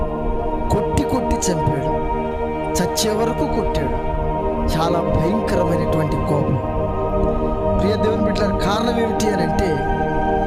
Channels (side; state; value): both; identical; correlation 1.00